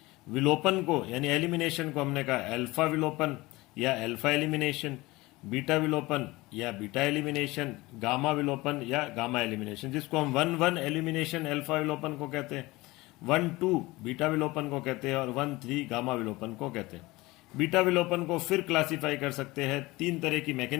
विलोपन को यानी एलिमिनेशन को हमने कहा अल्फा विलोपन या अल्फा एलिमिनेशन, बीटा विलोपन या बीटा एलिमिनेशन, गामा विलोपन या गामा एलिमिनेशन, जिसको हम 1-1 एलिमिनेशन अल्फा विलोपन को कहते हैं, 1-2 बीटा विलोपन को कहते हैं और 1-3 गामा विलोपन को कहते हैं। बीटा विलोपन को फिर क्लासिफाई कर सकते हैं। तीन तरह की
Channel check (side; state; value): right; quieter; 20.9 dB